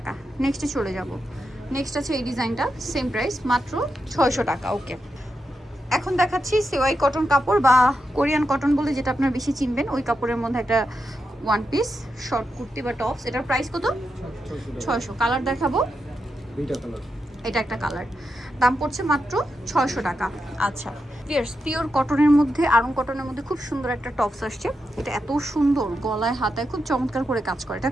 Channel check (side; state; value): both; normal; correlation 0.87